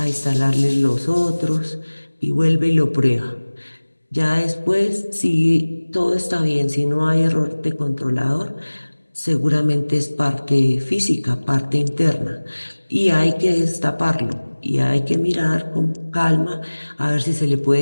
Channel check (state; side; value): inverted; both; correlation -1.00